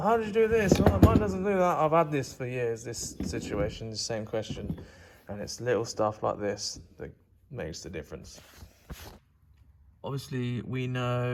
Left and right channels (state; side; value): identical; both; correlation 1.00